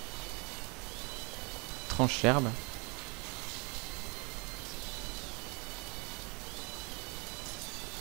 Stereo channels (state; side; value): quieter; left; 31.2 dB